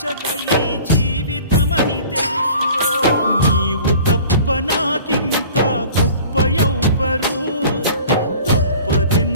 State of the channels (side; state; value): both; inverted; correlation -0.45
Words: ఈ జీవితమని తెలుసురో. నీవు తప్ప నాకింకా గొప్ప ఎవ్వరు,